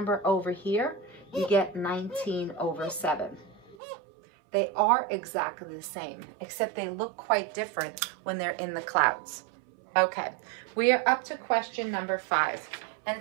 over here, you get 19 over 7. They are exactly the same, except they look quite different when they're in the clouds. Okay, we are up to question number 5. And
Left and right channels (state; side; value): drops out; left; at 3.8 s